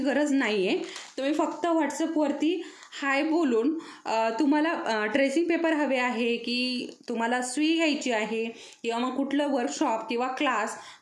नाही आहे. तुम्ही फक्त व्हॉट्सअपवरती हाय बोलून तुम्हाला ट्रेसिंग पेपर हवे आहे की तुम्हाला सुई घ्यायची आहे किंवा मग कुठलं वर्कशॉप किंवा क्लास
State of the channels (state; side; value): identical; both; correlation 1.00